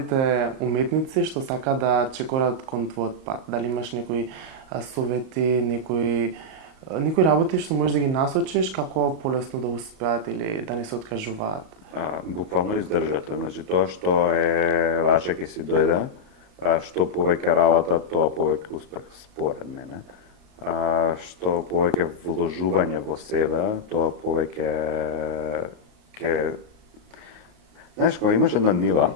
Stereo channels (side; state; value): left; late; 38 ms